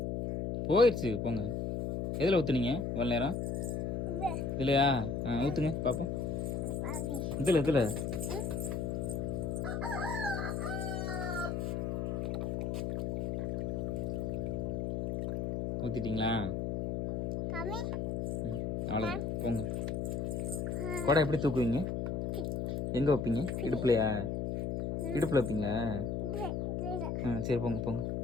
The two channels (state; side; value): noise; left; hum, 1 dB below the sound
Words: போயிடுச்சு போங்க. எதில் ஊற்றுனீங்க இவ்வளோ நேரம்? இல்லையா? ஊற்றுங்க பார்ப்போம். இதில் ஊற்றிட்டீங்களா? அவ்வளோதான் போங்க. குடம் எப்படி தூக்குவீங்க? எங்கே வைப்பீங்க? இடுப்புலையா? இடுப்பில் வைப்பீங்களா? சரி போங்க போங்க.